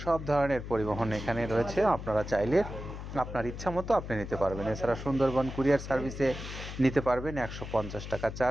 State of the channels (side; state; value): left; noise; hum, 9 dB below the sound